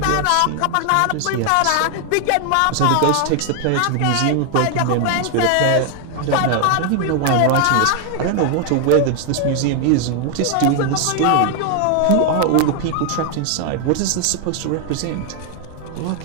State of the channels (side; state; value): both; different; correlation 0.00